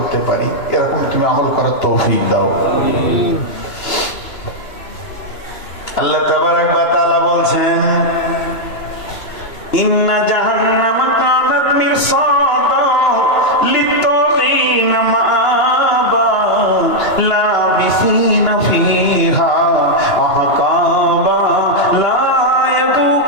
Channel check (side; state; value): right; late; 2.9 ms